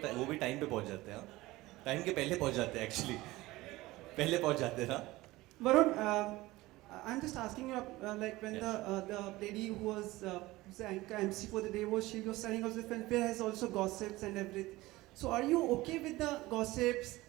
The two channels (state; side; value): quieter; left; 19.1 dB